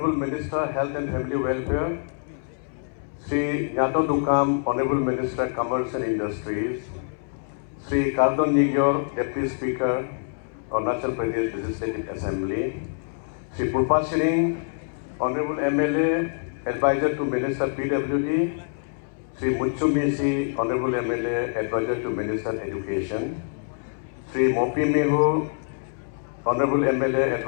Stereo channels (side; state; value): right; silent; 61 dB below the other